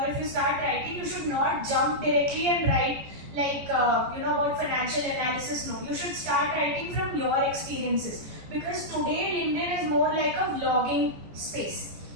you start writing, you should not jump directly and write about financial analysis. No, you should start writing from your experiences. Because today LinkedIn is more like a vlogging space.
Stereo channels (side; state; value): left; late; 14 ms